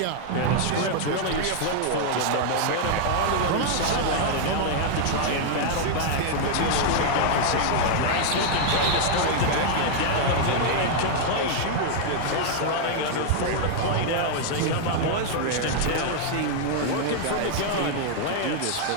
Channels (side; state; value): both; different; correlation 0.00